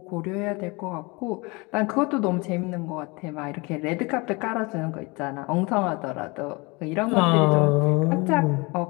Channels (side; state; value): right; quieter; 26.6 dB